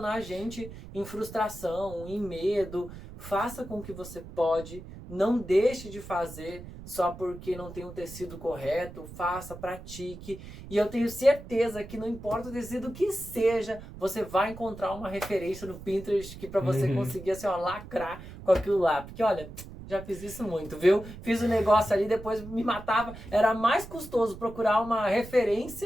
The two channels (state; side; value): noise; right; rumble, 14 dB below the sound